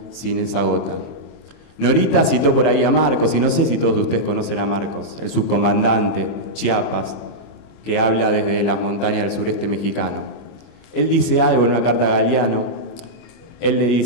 sin esa gota. Norita citó por ahí a Marcos, y no sé si todos ustedes conocen a Marcos, el subcomandante Chiapas, que habla desde las montañas del sureste mexicano. Él dice algo en una carta a Galeano. Él le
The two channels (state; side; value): late; right; 25 ms